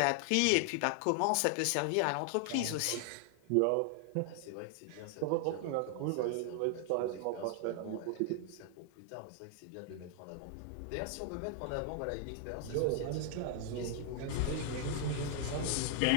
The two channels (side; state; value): both; different; correlation 0.00